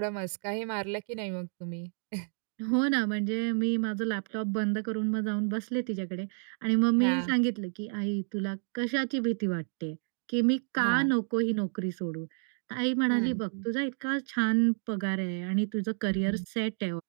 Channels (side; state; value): left; silent; 58 dB below the other